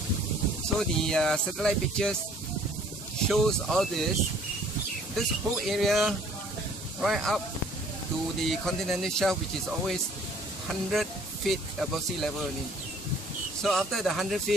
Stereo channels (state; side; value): normal; both; correlation 0.56